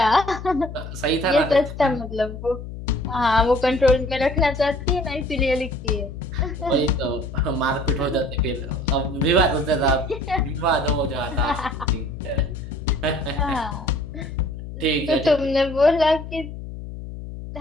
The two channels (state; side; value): noise; left; hum, 10 dB below the sound